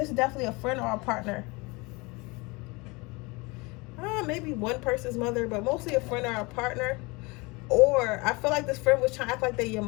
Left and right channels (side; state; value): right; quieter; 25.9 dB